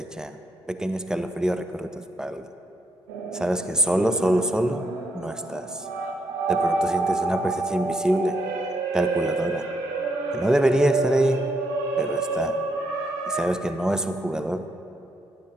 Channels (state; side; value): normal; both; correlation 0.75